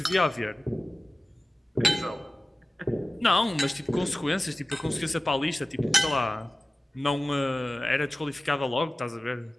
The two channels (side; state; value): both; normal; correlation 0.96